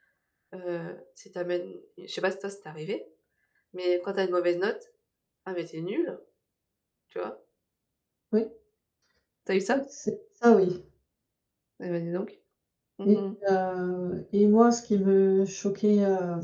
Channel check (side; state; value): both; identical; correlation 1.00